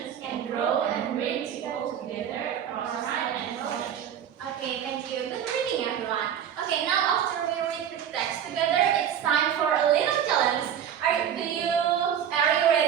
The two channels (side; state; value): left; quieter; 9.3 dB